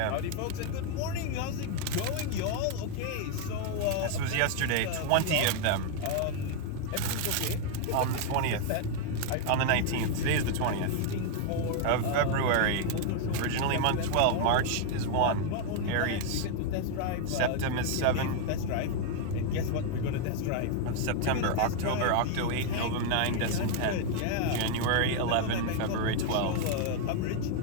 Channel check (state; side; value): different; both; correlation 0.00